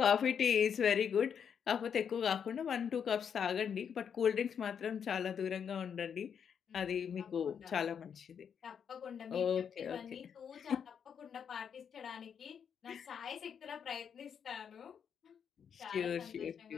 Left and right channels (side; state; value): right; quieter; 7.5 dB